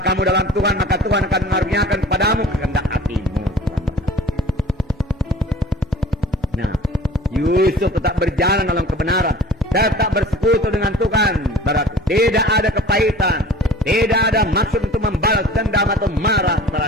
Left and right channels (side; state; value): both; normal; correlation 0.45